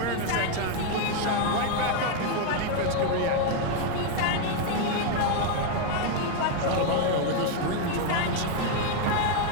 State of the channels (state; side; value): different; both; correlation 0.01